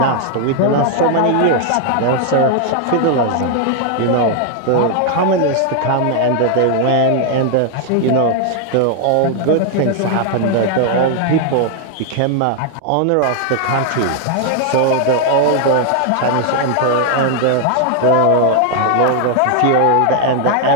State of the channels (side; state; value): both; different; correlation 0.00